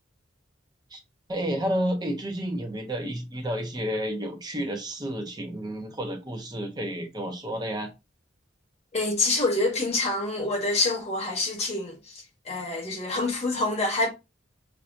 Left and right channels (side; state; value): both; normal; correlation 0.33